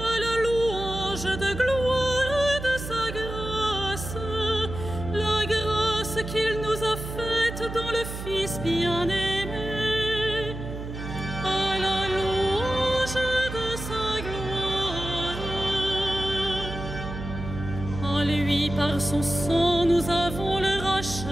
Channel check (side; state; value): right; noise; hum, 8 dB below the sound